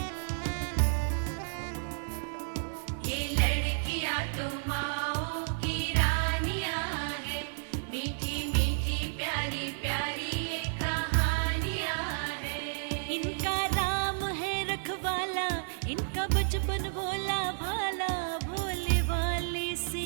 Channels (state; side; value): silent; left; digital silence